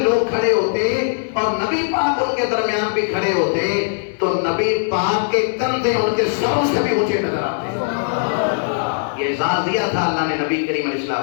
کھڑے ہوتے اور نبی پاک ان کے درمیان بھی کھڑے ہوتے تو نبی پاک کے کندھے ان کے سروں سے بھی اونچے نظر آتے۔ یہ اعزاز دیا تھا اللہ نے نبی کریم علیہ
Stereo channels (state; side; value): silent; right; digital silence